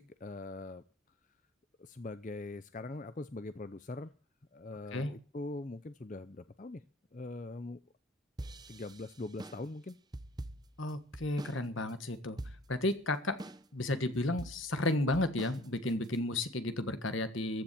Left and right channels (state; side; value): normal; both; correlation 0.51